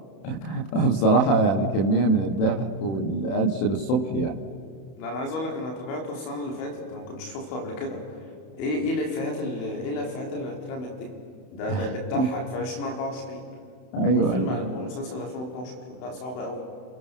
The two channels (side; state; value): right; late; 31 ms